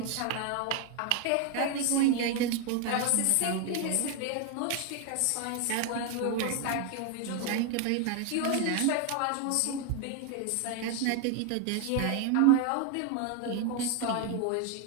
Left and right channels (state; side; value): different; both; correlation 0.01